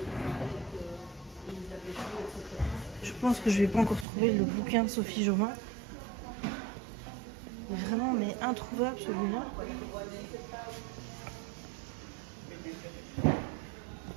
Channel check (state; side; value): drops out; left; at 4.0 s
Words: Je pense que je vais pas encore trouver le bouquin de Sophie Jobin. Vraiment, mais introuvable celui-là.